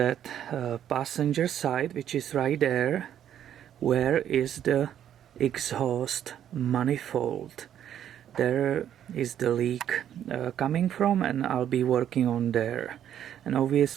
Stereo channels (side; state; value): left; quieter; 10.2 dB